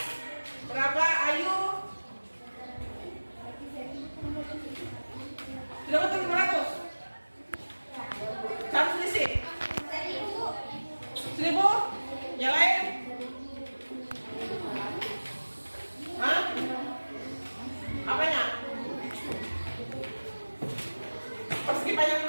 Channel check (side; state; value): both; inverted; correlation -1.00